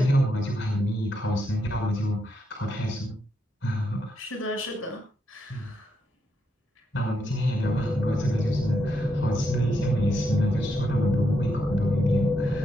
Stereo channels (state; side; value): normal; both; correlation 0.80